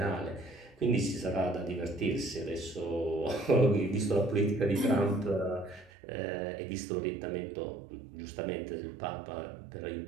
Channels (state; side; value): drops out; left; at 5.9 s